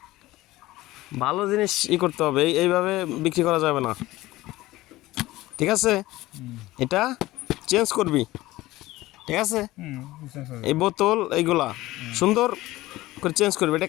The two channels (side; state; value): right; quieter; 17.8 dB